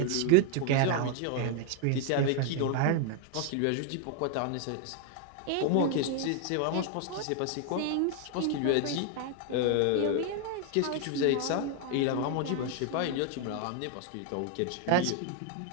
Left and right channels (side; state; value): both; different; correlation 0.01